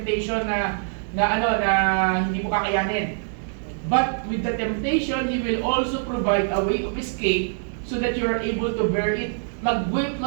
na hindi mo kakayanin. But with the temptation, He will also provide a way of escape so that you are able to bear it.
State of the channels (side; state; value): left; silent; 63 dB below the other